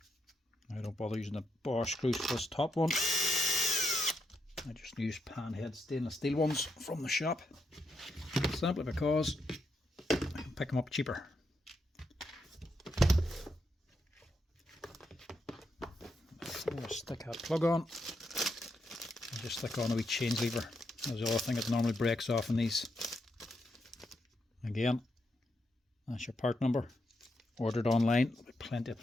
I don't bother using the Bosch screws for this top one. I just use panhead stainless steel ones from the shop, simply because I can pick them up cheaper. Before I stick that plug on, I just stick on a wee change lever. That's the other thing that normally breaks off in these. Again, that's your part number. Ordered online. Plenty of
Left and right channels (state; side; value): normal; both; correlation 0.81